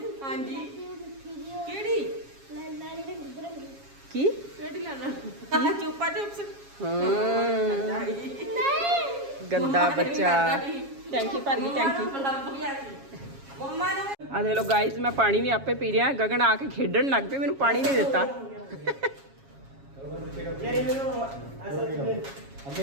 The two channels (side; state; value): left; late; 7.3 ms